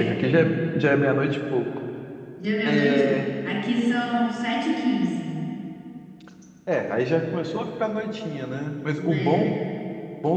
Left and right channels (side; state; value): both; identical; correlation 1.00